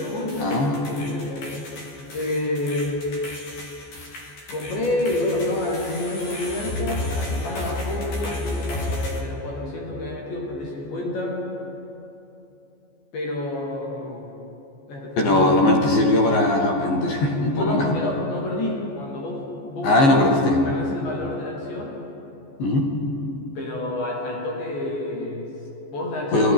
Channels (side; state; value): right; late; 14 ms